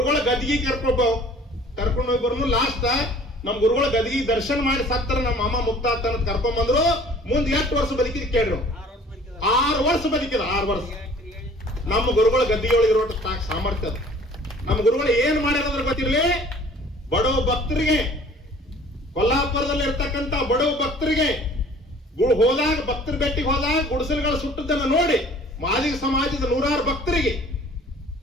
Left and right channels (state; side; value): normal; both; correlation 0.51